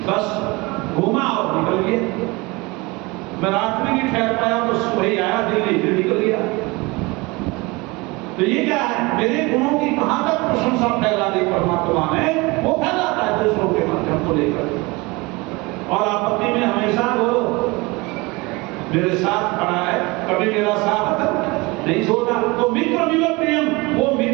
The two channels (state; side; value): quieter; left; 24.5 dB